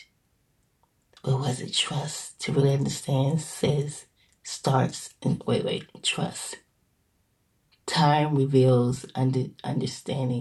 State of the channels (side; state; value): both; identical; correlation 1.00